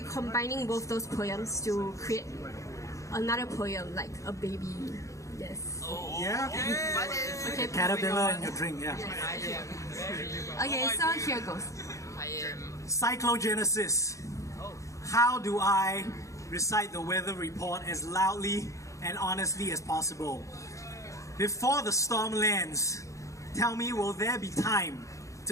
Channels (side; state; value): right; late; 0.15 ms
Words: combining both those poems to create another poem, like a baby. Yes. Yeah? Okay. Caterpillar in your drink, yeah. Okay, so here goes. Cyclogenesis. How do I recite the weather report as loudly and honestly as possible? Before the storm lands, tell me, will there be time